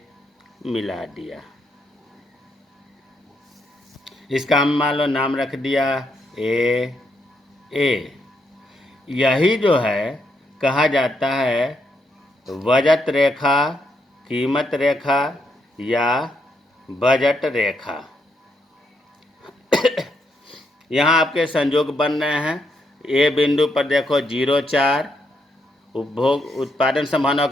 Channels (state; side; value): normal; both; correlation 0.78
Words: मिला दिया। इसका हम मान लो नाम रख दिया ए। यही जो है कहा जाता है बजट रेखा, कीमत रेखा या बजट रेखा। यहाँ आपके संजोग बन रहे हैं। ए बिंदु पर देखो 0,4, उपभोग उत्पादन संभावना